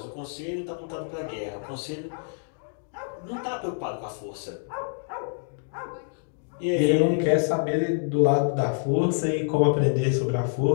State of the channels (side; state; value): right; silent; digital silence